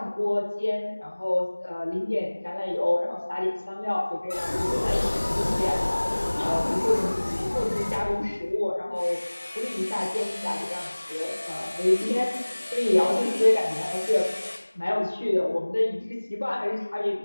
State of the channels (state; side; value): inverted; both; correlation -1.00